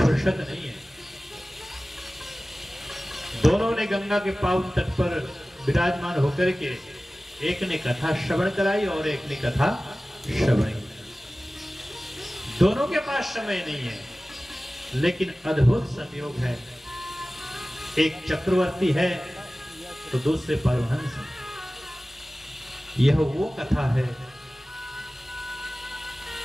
नहीं है। दोनों ने गंगा के पावन तट पर विराजमान होकर के एक ने कथा श्रवण कराई और एक ने कथा श्रवण की। दोनों के पास समय नहीं है, लेकिन अद्भुत संयोग है। एक चक्रवर्ती है तो दूसरे परमहंस है। यह वो कथा है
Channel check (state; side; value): normal; both; correlation 0.97